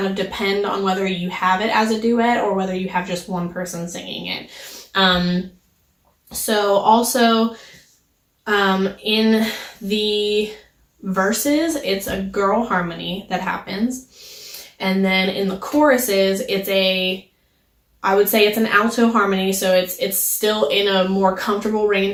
of depend on whether you have it as a duet or whether you have just one person singing it. So also in the verses, it's a girl harmony that happens. And then in the choruses, I would say it's an alto harmony, so it's still in a more comfortable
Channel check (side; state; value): both; identical; correlation 1.00